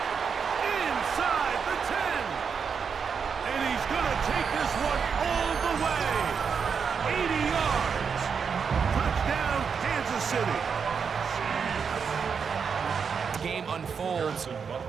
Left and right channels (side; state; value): left; quieter; 6.2 dB